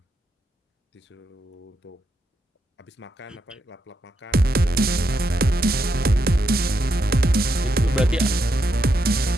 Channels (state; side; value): normal; both; correlation 0.81